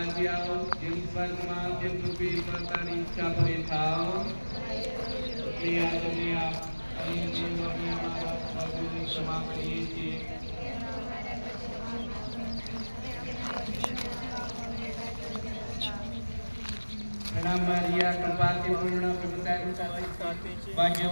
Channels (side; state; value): both; inverted; correlation -1.00